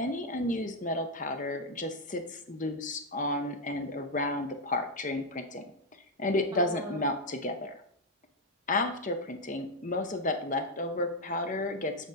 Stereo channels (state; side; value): normal; both; correlation 0.01